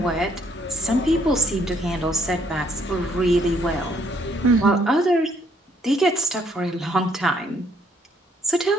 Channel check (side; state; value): both; normal; correlation 0.67